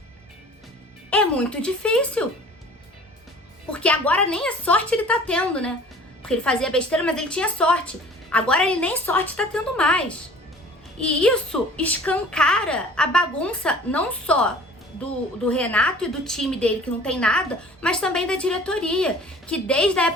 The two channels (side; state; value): both; normal; correlation 0.47